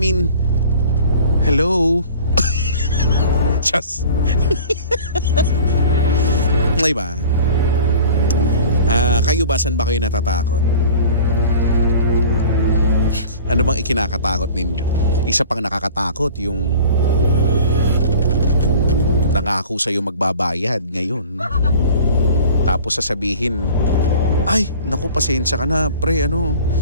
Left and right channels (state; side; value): inverted; both; correlation -0.43